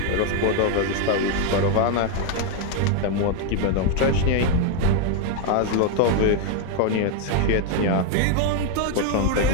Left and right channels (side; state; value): both; different; correlation 0.01